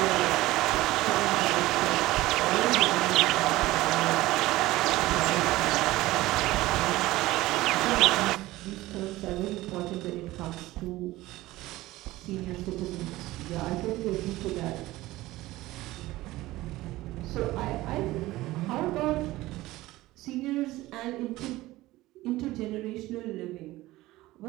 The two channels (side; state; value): left; quieter; 17.8 dB